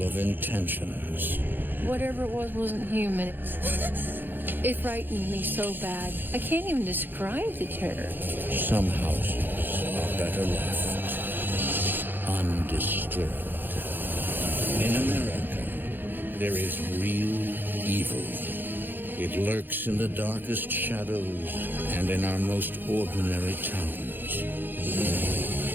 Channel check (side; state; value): left; late; 0.093 ms